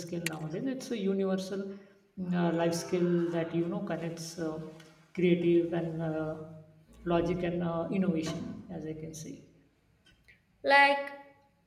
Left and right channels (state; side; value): identical; both; correlation 1.00